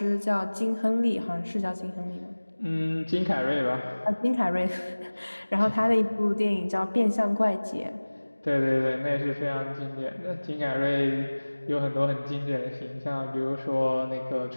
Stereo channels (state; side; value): inverted; both; correlation -1.00